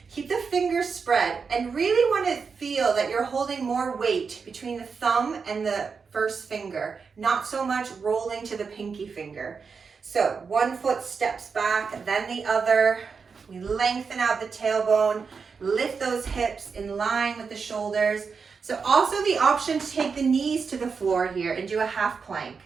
keep the fingers spread, and really want to feel that you're holding more weight between the thumb and the first finger, not so much rolling to the pinky finger. So one foot steps back, then the other. We lengthen out the tailbone, lift those hips in line with the shoulders. So also the option to take the knees to the floor here and do a half plank.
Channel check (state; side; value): quieter; left; 5.4 dB